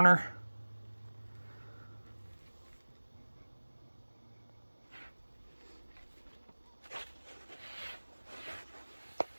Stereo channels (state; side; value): inverted; both; correlation -1.00